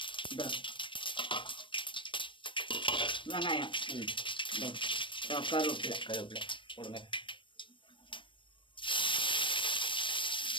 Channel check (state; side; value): late; right; 0.24 ms